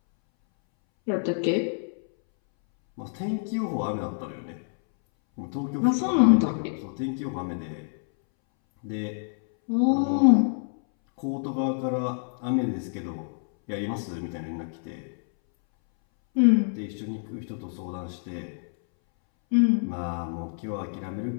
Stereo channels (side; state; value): right; silent; 60 dB below the other